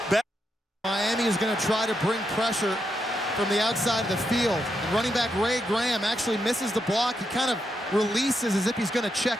Miami is going to try to bring pressure from the outside of the field. And running back Ray Graham actually misses the block. He kind of releases as if he's going to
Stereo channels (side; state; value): both; normal; correlation 0.83